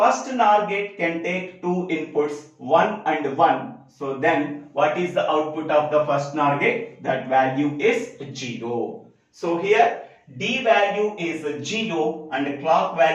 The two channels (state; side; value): identical; both; correlation 1.00